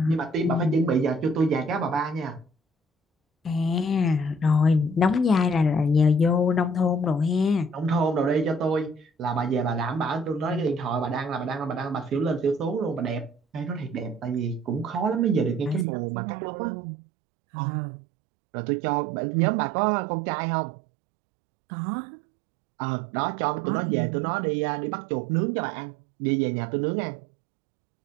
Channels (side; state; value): left; drops out; at 15.9 s